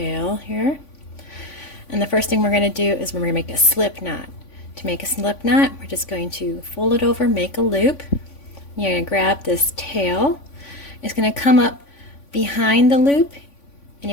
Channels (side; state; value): right; late; 3.5 ms